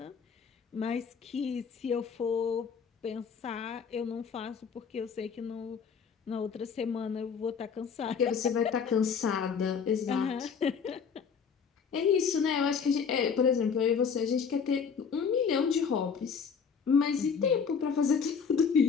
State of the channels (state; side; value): quieter; right; 6.3 dB